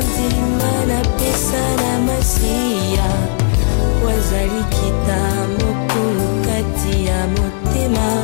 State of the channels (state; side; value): silent; right; 58 dB below the other